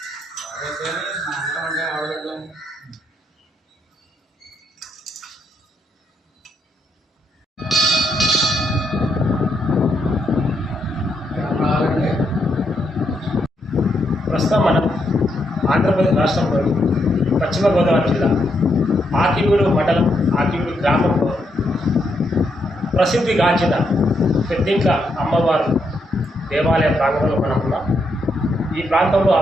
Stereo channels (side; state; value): both; normal; correlation 0.78